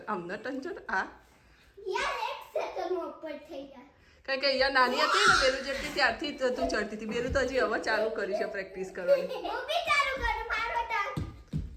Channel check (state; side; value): identical; both; correlation 1.00